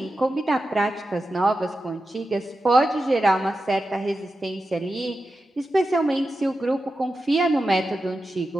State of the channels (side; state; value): both; normal; correlation 0.91